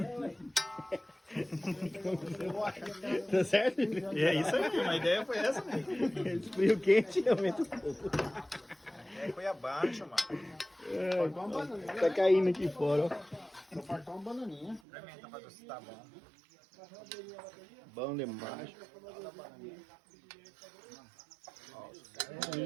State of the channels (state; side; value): drops out; left; at 14.8 s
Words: Tá certo? É isso aí, a ideia foi essa mesmo. Esfria o quente e aumenta o pouco. A ideia foi abaixo, mano. Tá caindo aqui fora, ó. Só faltou uma bananinha. Experimenta pra ver se tá bom. Bom demais.